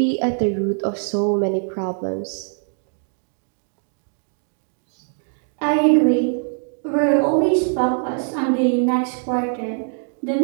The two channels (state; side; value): silent; left; 64 dB below the other